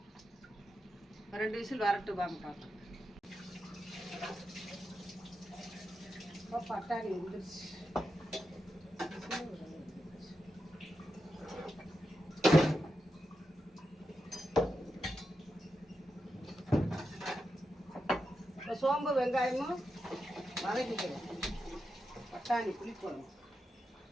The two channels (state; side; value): normal; both; correlation 0.87